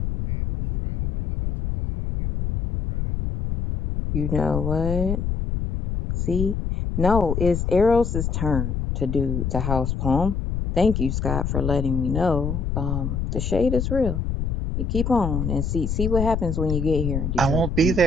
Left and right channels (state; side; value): noise; left; rumble, 2 dB below the sound